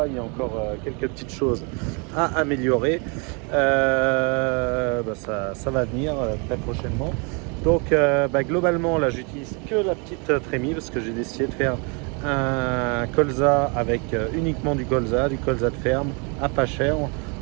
il y a encore quelques petites choses à améliorer. Ça va venir très prochainement. Donc, globalement, là, j'utilise que la petite trémie parce que j'ai décidé de faire un colza avec uniquement du colza de ferme à pas cher,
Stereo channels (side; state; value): left; quieter; 33.5 dB